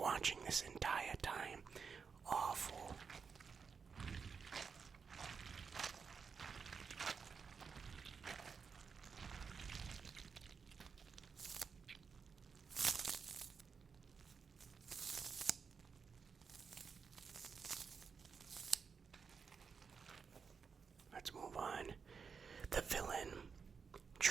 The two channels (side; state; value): left; quieter; 5.7 dB